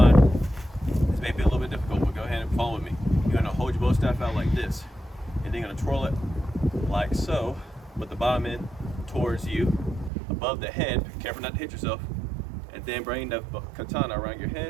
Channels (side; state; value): left; drops out; at 10.1 s